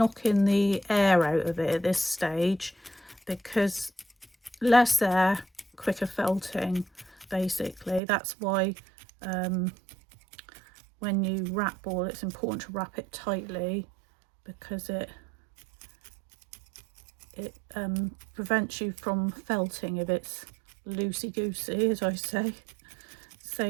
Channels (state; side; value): drops out; left; at 8.0 s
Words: the air out of it at this stage, because less air, quicker felting, basically. That's why when you wrap wool, it's important to wrap it tightly, because it prevents you from felting if it's loosey-goosey, as I say. So